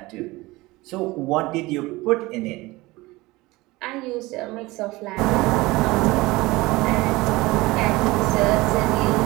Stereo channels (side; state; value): left; quieter; 20.8 dB